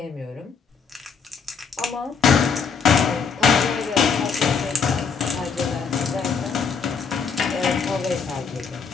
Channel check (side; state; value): right; quieter; 5.8 dB